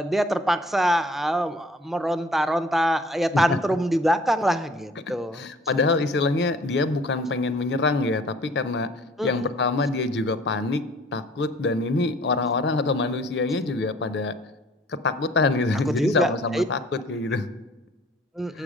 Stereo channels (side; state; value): both; normal; correlation 0.53